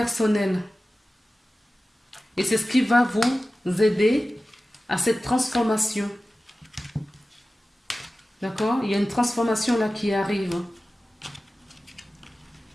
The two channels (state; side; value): normal; both; correlation 0.95